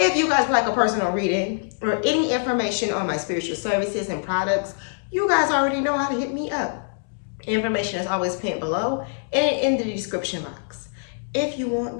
you guys would like a personal reading or any information on my spiritual services and products, you guys already know how to hit me up. Information is always pinned below and in the description box. If you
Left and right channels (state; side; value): silent; right; digital silence